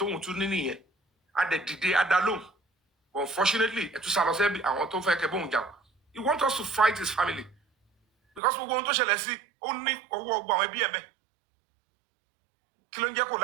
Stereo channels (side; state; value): left; drops out; at 8.4 s